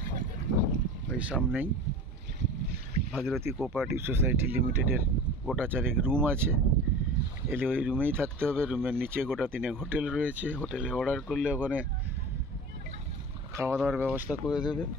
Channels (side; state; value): both; normal; correlation 0.37